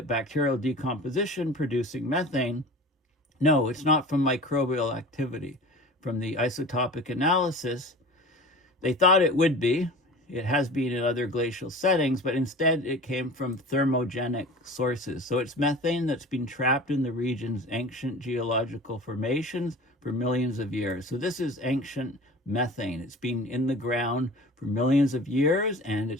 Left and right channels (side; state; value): both; normal; correlation 0.38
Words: bacterial decomposition producing methane. No, it's not from microbial activity. From the isotopic analysis, they thought it would be. It has been in other glacial settings, but instead it came from thermogenic sources. So it's methane that's been trapped in the region's ancient geological formations for millions of years. So this is ancient methane. It's been in the ground for millions of years, and